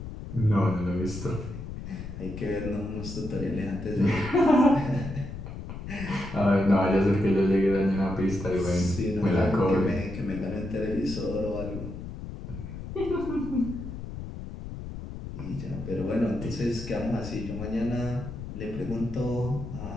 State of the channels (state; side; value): noise; left; rumble, 9 dB below the sound